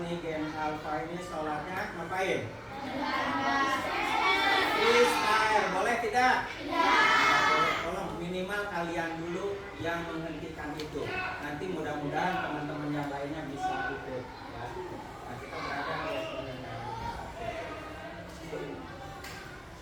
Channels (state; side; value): identical; both; correlation 1.00